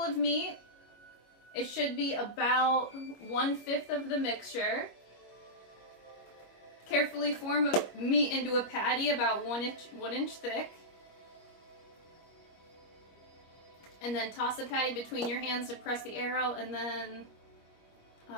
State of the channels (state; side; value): late; right; 25 ms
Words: of meat. It should be about 1/5 of the mixture. Carefully form a meat into a patty about 1 inch thick. And then toss the patty between your hands to press the air out and then